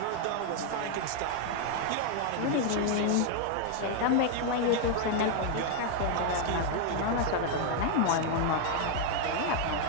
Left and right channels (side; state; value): both; different; correlation 0.00